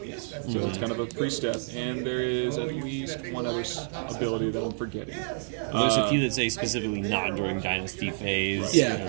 So it's kind of a pre-step, and there is at least one other ability that I'm forgetting. There's a few that say specifically not during Dynasty phase.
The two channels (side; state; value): left; silent; digital silence